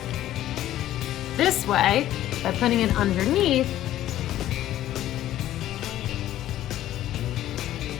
this way by putting it underneath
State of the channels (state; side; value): quieter; right; 13.3 dB